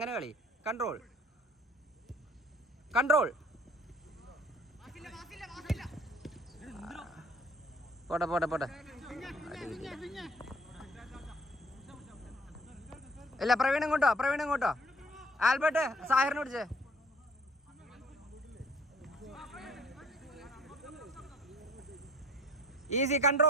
കളി. Control control. പോട്ടെ പോട്ടെ പോട്ടെ. ഇല്ല പ്രവീൺ ഇങ്ങോട്ടോ. ആൽബർട്ട് സാഹിറിനെ പിടിച്ചേ. Easy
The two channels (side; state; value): both; normal; correlation 0.54